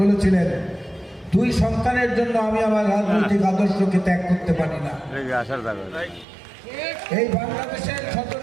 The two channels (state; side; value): drops out; left; at 6.2 s